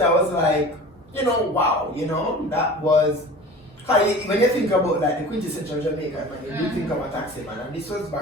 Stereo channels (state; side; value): normal; both; correlation 0.39